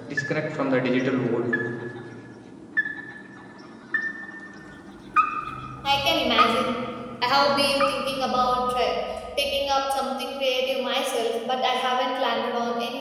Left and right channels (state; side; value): identical; both; correlation 1.00